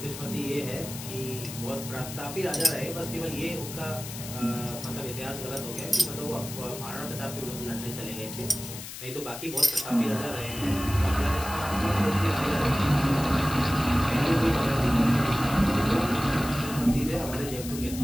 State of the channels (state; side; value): noise; left; hiss, 10 dB below the sound